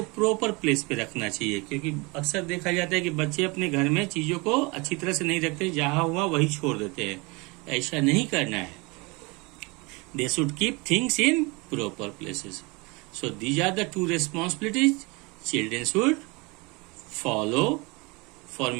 प्रॉपर प्लेस पे रखना चाहिए, क्योंकि अक्सर देखा जाता है कि बच्चे अपने घर में चीजों को अच्छी तरह से नहीं रखते, जहां हुआ वही छोड़ देते हैं। ऐसा नहीं करना है। They should keep things in proper places. So these are the 2 responsibilities children should follow for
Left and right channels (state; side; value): quieter; left; 27.0 dB